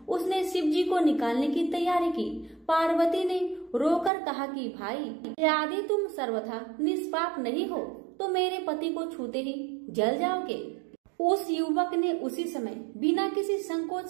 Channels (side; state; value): left; drops out; at 4.1 s